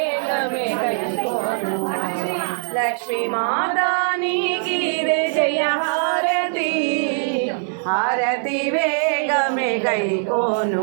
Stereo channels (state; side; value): silent; left; digital silence